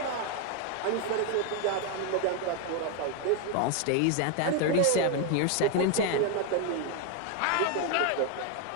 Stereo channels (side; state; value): both; different; correlation 0.01